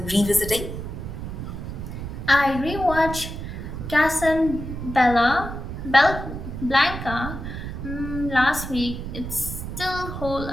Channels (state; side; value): noise; right; rumble, 7 dB below the sound